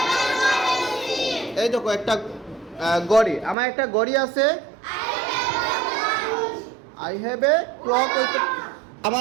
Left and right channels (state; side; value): drops out; left; at 3.6 s